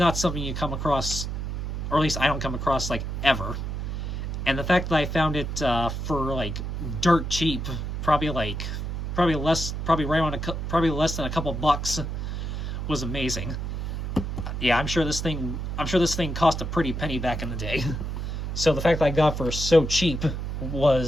something you come across, or at least I don't come across, like, ever. And the fact that I found it for, like, dirt cheap, probably less than a couple bucks, was amazing. Yeah, I'm sure this thing cost a pretty penny back in the day. So the fact that I got for so cheap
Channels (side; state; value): right; noise; hum, 4 dB below the sound